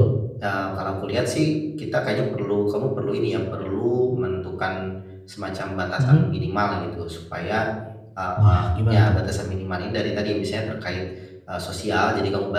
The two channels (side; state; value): both; identical; correlation 1.00